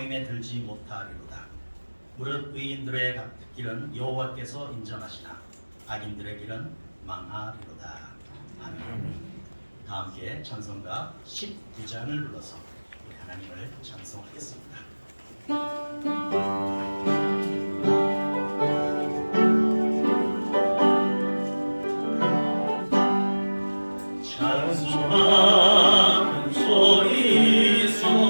들지 못하리로다. 무릇 의인들의 길은 여호와께서 인정하시나 악인들의 길은 망하리로다. 아멘. 다 함께 찬송가 19장을 불러서 우리 하나님을 찬송하겠습니다. 찬송하는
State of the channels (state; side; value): inverted; both; correlation -1.00